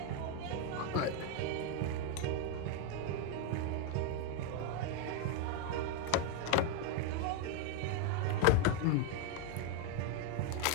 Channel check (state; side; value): different; both; correlation 0.00